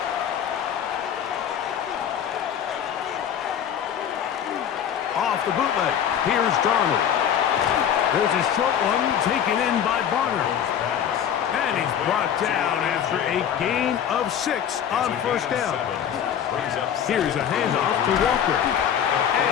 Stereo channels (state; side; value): quieter; right; 9.1 dB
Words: Off the bootleg, here's Darnold. There's a short one taken in by Barner. And he's brought down after a gain of 6 on 1st down. Here's a handoff to Walker.